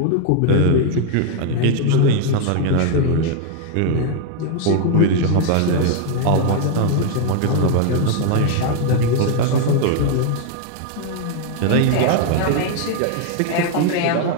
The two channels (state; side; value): different; both; correlation 0.00